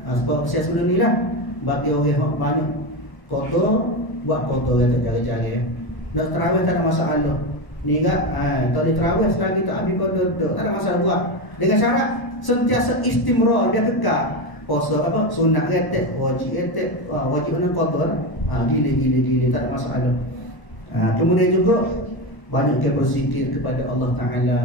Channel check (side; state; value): right; late; 1.0 ms